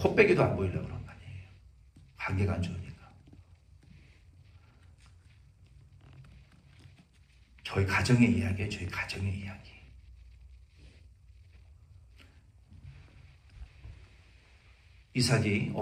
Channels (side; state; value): both; identical; correlation 1.00